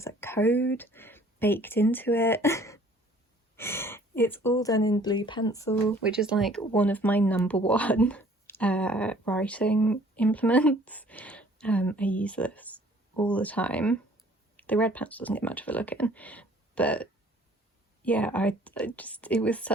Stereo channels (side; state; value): both; normal; correlation 0.55